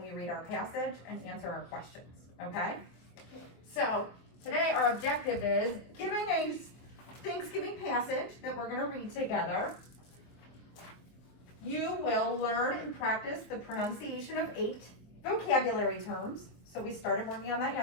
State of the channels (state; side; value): late; right; 24 ms